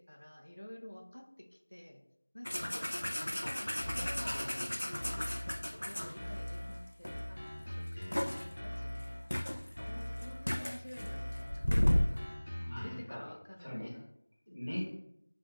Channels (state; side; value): inverted; both; correlation -1.00